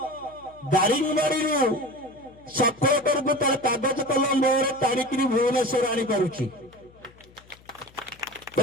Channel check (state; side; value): noise; left; hum, 26 dB below the sound